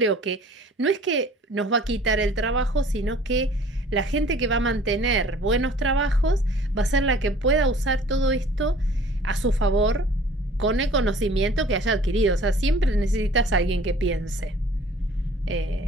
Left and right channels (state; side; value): normal; both; correlation 0.50